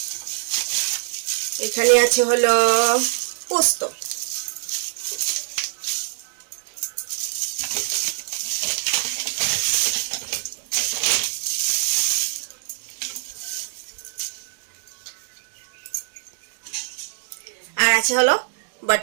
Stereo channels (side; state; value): left; silent; digital silence